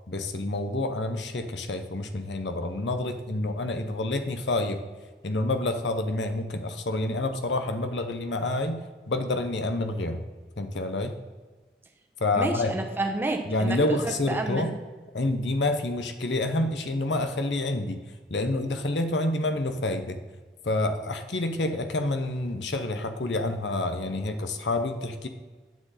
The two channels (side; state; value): both; normal; correlation 0.41